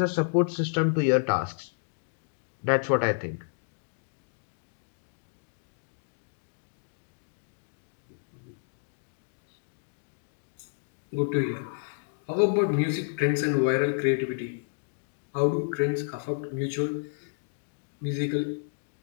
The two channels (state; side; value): silent; right; digital silence